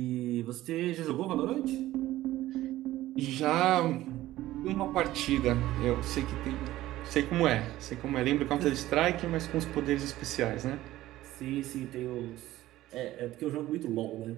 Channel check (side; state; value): left; quieter; 15.5 dB